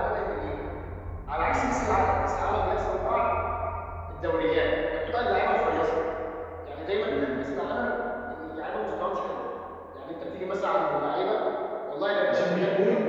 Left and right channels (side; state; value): both; identical; correlation 1.00